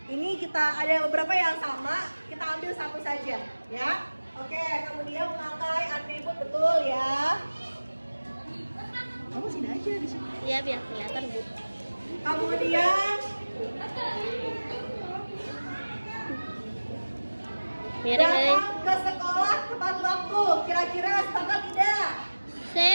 Ini kita ada beberapa yang sama, kita ambil satu saja, ya. Oke, kemudian memakai atribut betul ya. Kamu sini aja di sini. Iya, biar kelihatan, Bu. Kemudian Miring-miring. datang ke sekolah tepat waktu. Kira-kira sepakat tidak?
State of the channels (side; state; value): both; inverted; correlation -1.00